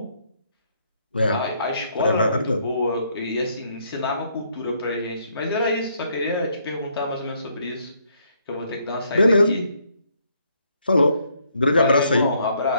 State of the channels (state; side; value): inverted; both; correlation -0.70